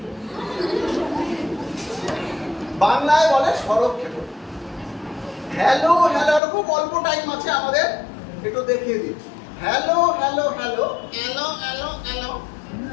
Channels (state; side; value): drops out; right; at 6.4 s